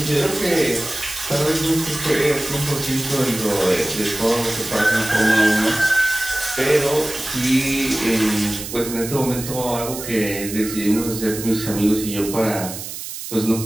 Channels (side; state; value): right; noise; hiss, 9 dB below the sound